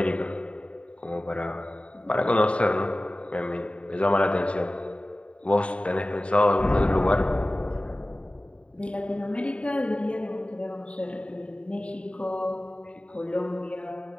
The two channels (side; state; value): right; late; 0.061 ms